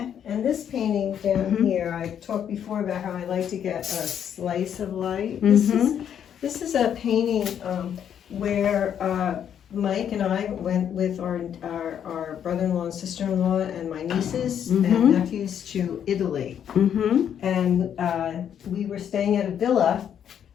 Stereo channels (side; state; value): right; quieter; 9.0 dB